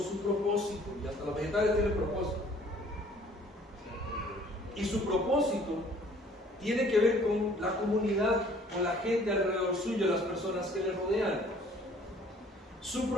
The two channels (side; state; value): both; normal; correlation 0.56